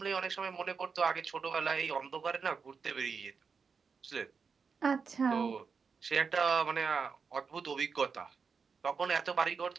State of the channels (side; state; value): left; quieter; 5.5 dB